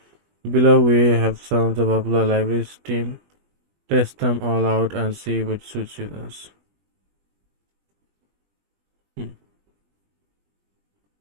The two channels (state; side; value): late; left; 20 ms